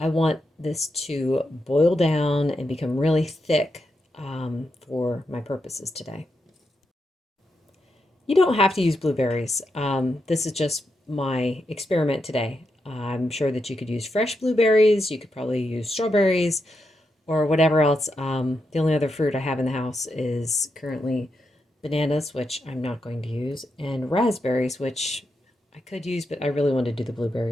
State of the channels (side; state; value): both; normal; correlation 0.84